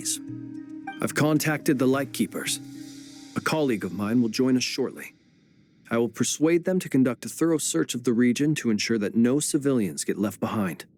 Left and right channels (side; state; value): both; identical; correlation 1.00